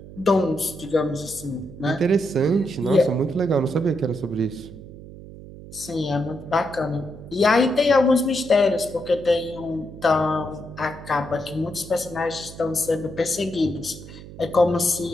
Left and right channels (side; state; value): right; noise; hum, 15 dB below the sound